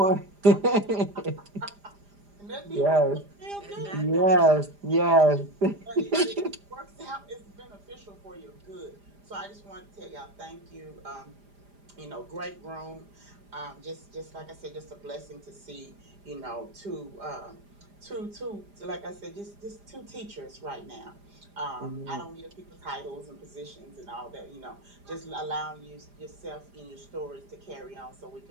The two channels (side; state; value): left; late; 4.9 ms